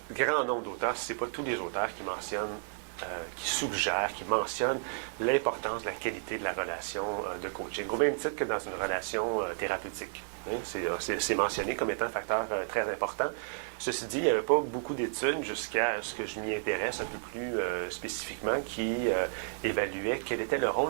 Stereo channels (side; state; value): left; silent; digital silence